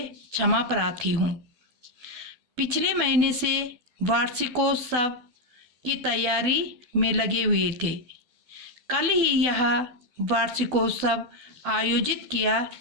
क्षमा प्रार्थी हूँ। पिछले महीने से वार्षिकोत्सव की तैयारी में लगे हुए थे। कल ही यह वार्षिकोत्सव आयोजित किया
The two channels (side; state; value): left; late; 12 ms